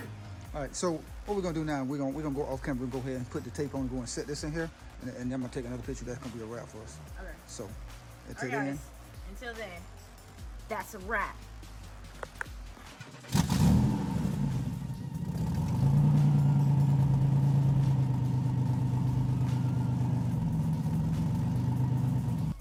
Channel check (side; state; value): both; identical; correlation 1.00